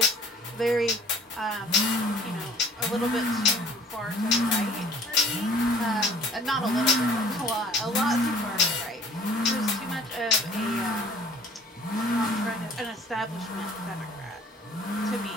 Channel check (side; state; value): both; normal; correlation 0.51